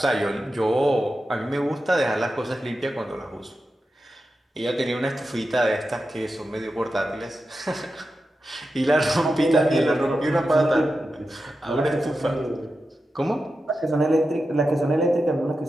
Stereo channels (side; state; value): both; normal; correlation 0.91